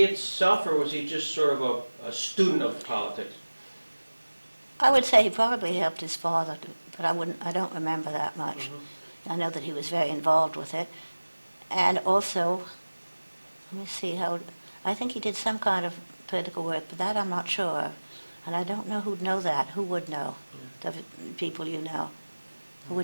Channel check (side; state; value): both; inverted; correlation -1.00